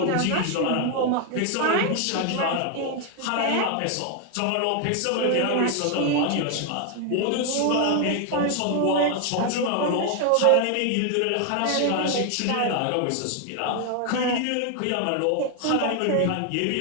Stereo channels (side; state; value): both; different; correlation 0.01